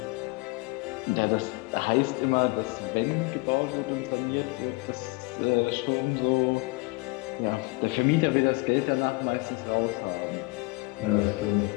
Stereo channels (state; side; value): quieter; right; 26.3 dB